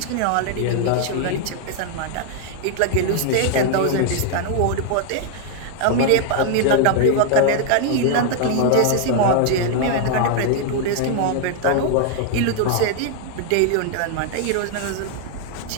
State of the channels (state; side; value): different; both; correlation 0.00